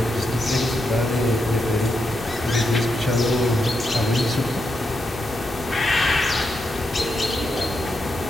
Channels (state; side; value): normal; both; correlation 0.84